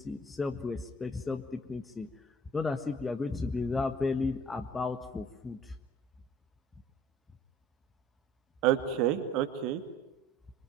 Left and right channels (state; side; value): normal; both; correlation 0.53